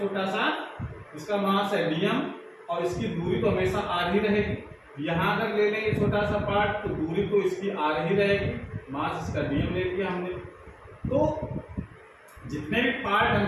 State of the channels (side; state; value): both; identical; correlation 1.00